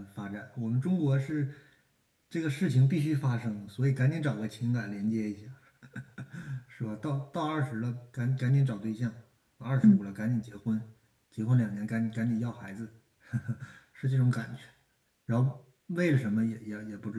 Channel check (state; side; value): identical; both; correlation 1.00